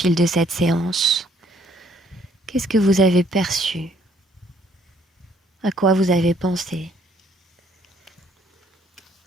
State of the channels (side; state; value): both; normal; correlation 0.64